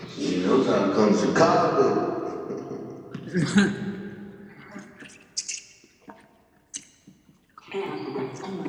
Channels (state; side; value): identical; both; correlation 1.00